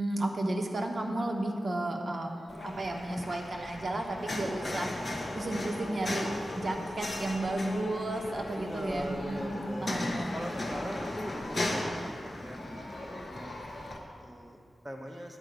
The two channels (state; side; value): normal; both; correlation 0.92